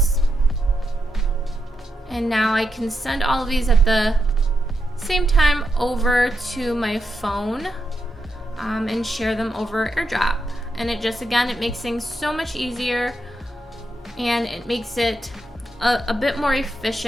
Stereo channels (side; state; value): both; normal; correlation 0.84